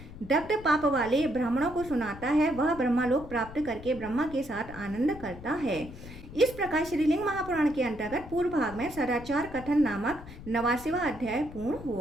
दग्ध पाप वाले ब्राह्मणों को सुनाता है, वह ब्रह्मलोक प्राप्त करके ब्रह्मा के साथ आनंद करता है। इस प्रकार श्रीलिंग महापुराण के अंतर्गत पूर्व भाग में सदाचार कथन नामक 89वां अध्याय पूर्ण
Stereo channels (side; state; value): left; noise; rumble, 15 dB below the sound